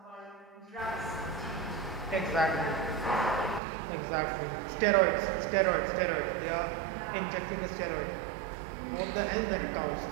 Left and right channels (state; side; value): drops out; left; at 3.6 s